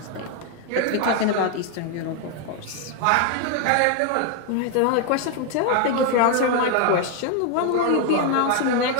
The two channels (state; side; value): different; both; correlation 0.01